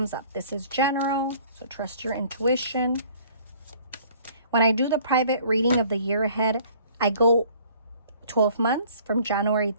up. This is general, so trust your intuition. When I do the private reading of the year ahead, I go 12 months from January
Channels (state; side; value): inverted; both; correlation -0.55